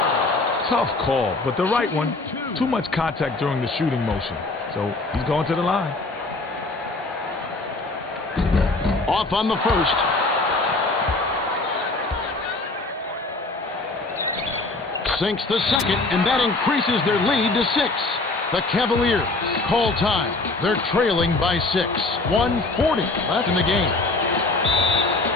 Tough call, but the right one. Too much contact during the shooting motion. So he's going to the line. Off on the first. Sinks the second, and that increases their lead to 6. The Cavaliers call time. They're trailing by 6. 1:40 left in the game.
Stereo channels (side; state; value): right; quieter; 3.2 dB